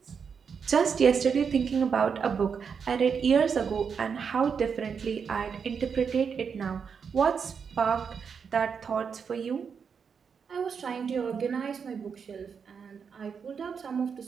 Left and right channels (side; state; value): left; quieter; 6.4 dB